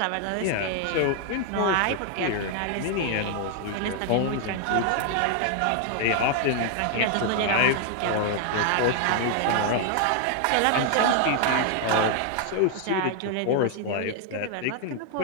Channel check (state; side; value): different; both; correlation 0.00